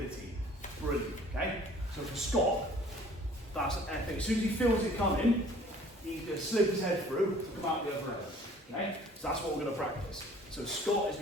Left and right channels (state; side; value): normal; both; correlation 0.52